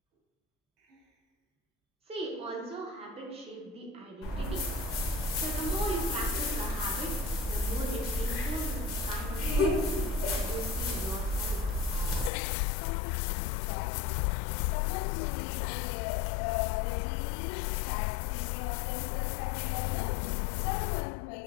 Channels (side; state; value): right; drops out; at 12.3 s